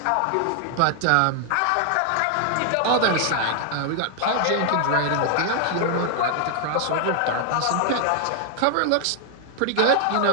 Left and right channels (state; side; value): different; both; correlation 0.00